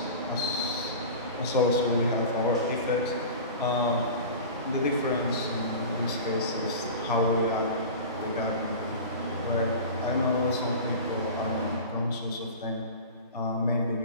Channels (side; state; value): both; inverted; correlation -0.34